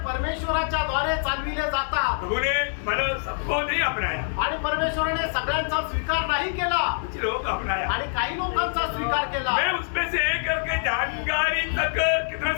परमेश्वराच्या द्वारे चालविले जातात। प्रभु ने मतलब सबको नहीं अपनाया, आणि परमेश्वराने सगळ्यांचा स्वीकार नाही केला कुछ लोगों को अपनाया। आणि काही लोकांचा स्वीकार केला। मैं उसमें से एक करके जानकारी तक कितना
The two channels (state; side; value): silent; right; digital silence